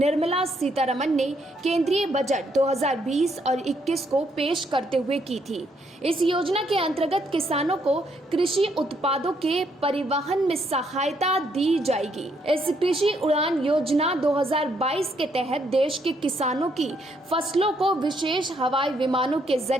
सीतारमण ने केंद्रीय बजट 2020 और 21 को पेश करते हुए की थी। इस योजना के अंतर्गत किसानों को कृषि उत्पादों के परिवहन में सहायता दी जाएगी। इस कृषि उड़ान योजना 2022 के तहत देश के किसानों की फसलों को विशेष हवाई विमानों के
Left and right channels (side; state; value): both; normal; correlation 0.72